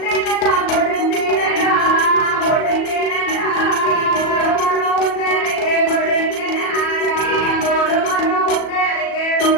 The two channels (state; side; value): late; right; 37 ms